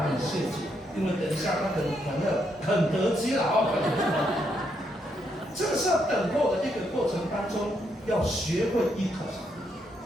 谢主，因为等一下他很得机了啊。这个是要等候的一个过程当中，要学会依靠上帝。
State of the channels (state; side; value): normal; both; correlation 0.77